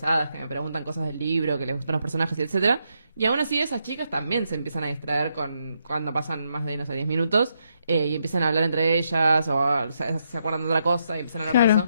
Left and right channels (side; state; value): both; inverted; correlation -0.79